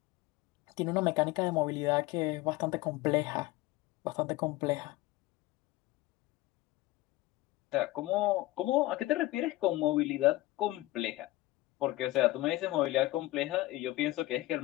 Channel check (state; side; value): quieter; right; 18.1 dB